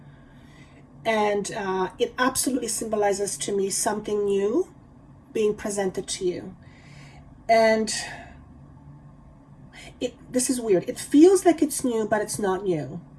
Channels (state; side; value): identical; both; correlation 1.00